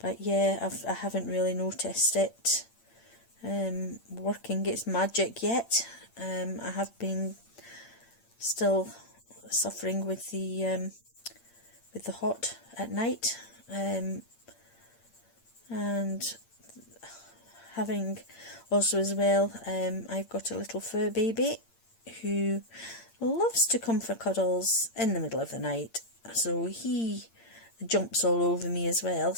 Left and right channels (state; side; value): late; right; 8.7 ms